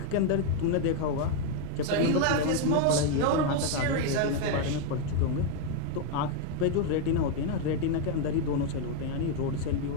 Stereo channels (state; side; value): different; both; correlation 0.00